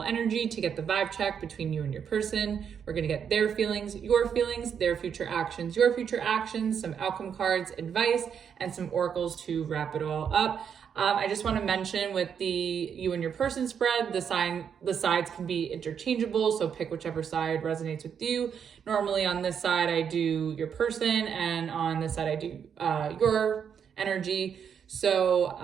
energy to get the vibe check between you and your person. We're going to get their feelings, their future actions, your future actions, some outcome cards, advice, and some oracles to wrap it all up. I just want to mention with the you and your person spread, the sides can be interchangeable, so pick whichever side resonates with you. Normally on this side, I do your person, and on this side, I do your energy.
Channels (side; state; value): left; quieter; 7.6 dB